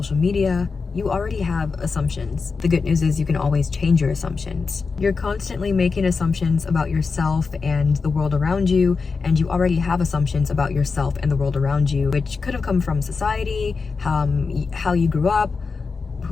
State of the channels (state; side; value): quieter; right; 4.7 dB